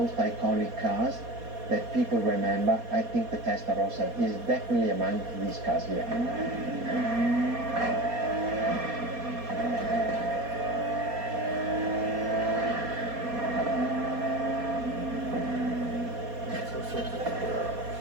iconic cars that people remember, I think the Testarossa is definitely among these cars here.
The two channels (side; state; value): left; late; 4.2 ms